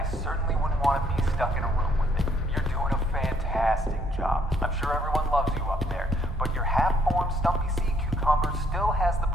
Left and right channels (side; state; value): both; normal; correlation 0.67